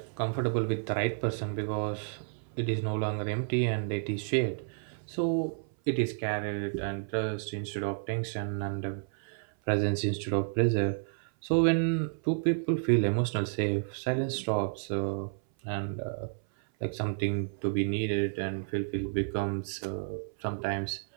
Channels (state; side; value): silent; left; 57 dB below the other